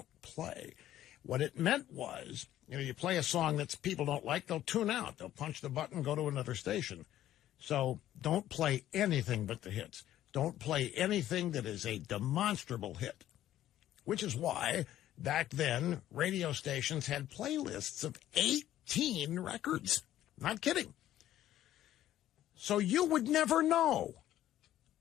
play. What it meant was, you play a song that people don't like, they'll tune out. They'll punch the button, go to another station. So don't play anything but the hits. Don't play anything that is a demonstrable hit, which is why back then radio stations had playlists of 18 records. Not kidding. So you would never know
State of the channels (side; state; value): right; quieter; 12.9 dB